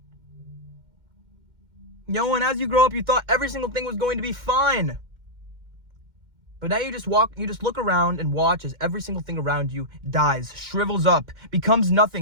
And as you grow up, you thought every single thing was going to be fine. But now you just look around and watch as every single thing around you dies, shrivels up, becomes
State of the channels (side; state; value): left; late; 2.1 ms